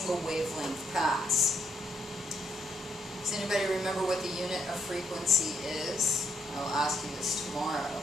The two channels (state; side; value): normal; both; correlation 0.75